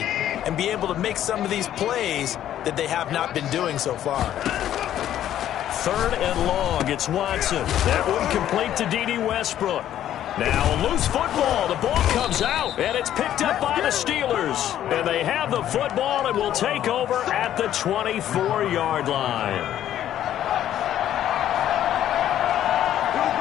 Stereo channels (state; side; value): quieter; right; 11.5 dB